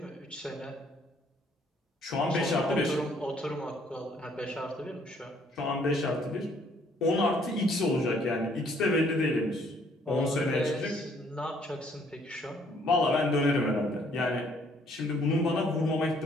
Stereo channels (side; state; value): both; normal; correlation 0.64